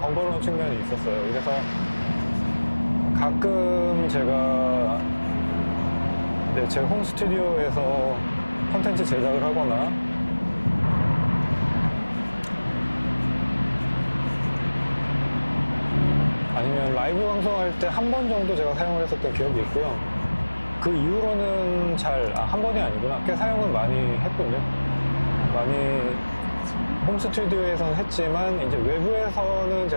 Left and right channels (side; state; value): both; inverted; correlation -1.00